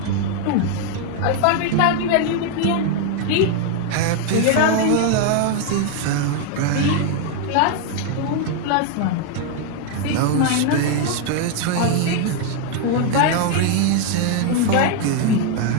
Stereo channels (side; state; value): both; different; correlation 0.00